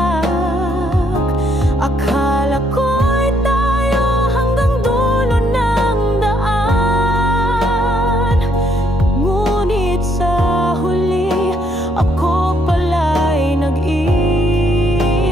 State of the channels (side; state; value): both; normal; correlation 0.70